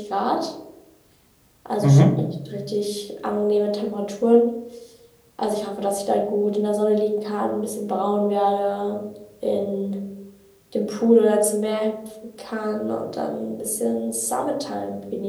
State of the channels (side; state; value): both; identical; correlation 1.00